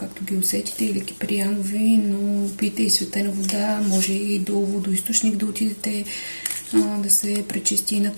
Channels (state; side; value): inverted; both; correlation -1.00